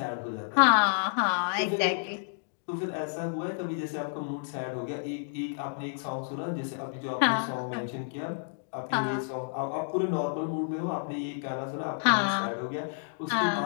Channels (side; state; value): right; silent; digital silence